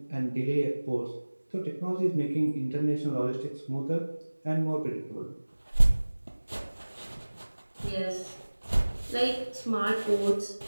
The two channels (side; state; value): both; inverted; correlation -1.00